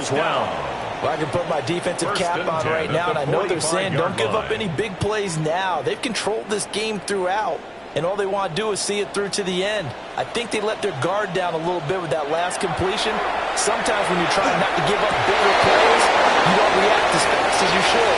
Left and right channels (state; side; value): identical; both; correlation 1.00